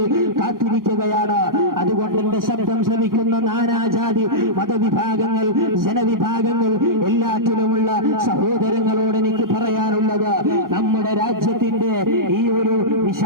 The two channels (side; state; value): left; late; 0.91 ms